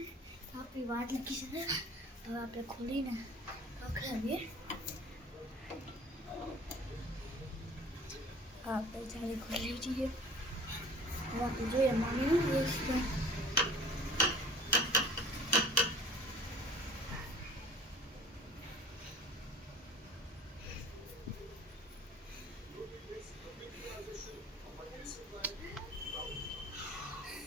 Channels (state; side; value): normal; both; correlation 0.46